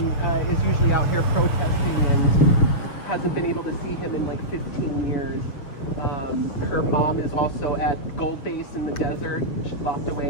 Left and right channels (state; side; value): late; right; 7.2 ms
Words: is usually out here protesting and hasn't been able to see him in like 15 years. Her mom is also at Gold Base in the desert. She locked